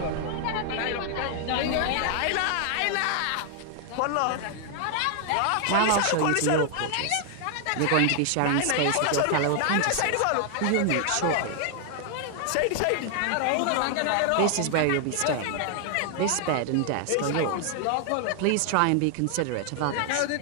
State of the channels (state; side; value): different; both; correlation 0.00